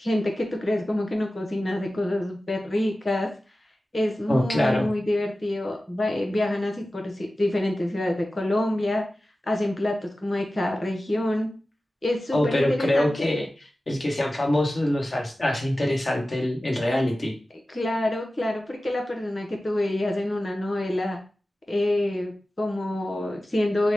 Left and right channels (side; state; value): both; normal; correlation 0.95